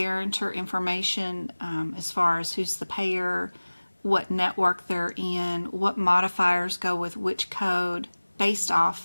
information as far as who's the payer, what network they're in, what modifiers go with which code based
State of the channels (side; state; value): both; inverted; correlation -1.00